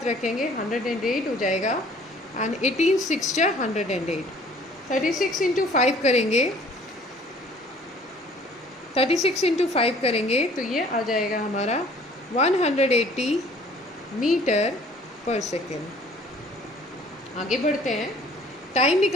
रखेंगे 108 हो जाएगा, एंड 18 6 ज़ा 108। 36 इंटू 5 करेंगे, 36 इंटू 5 करेंगे तो ये आ जाएगा हमारा 180 मीटर पर सेकेंड। आगे बढ़ते हैं। टाइम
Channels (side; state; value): both; normal; correlation 0.54